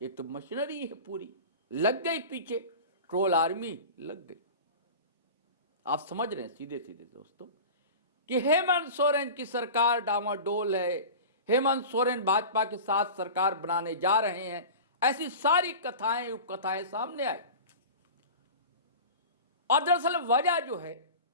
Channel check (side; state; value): both; inverted; correlation -0.34